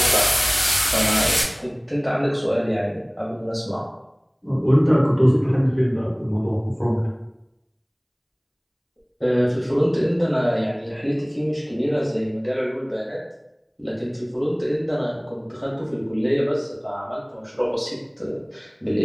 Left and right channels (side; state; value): both; identical; correlation 1.00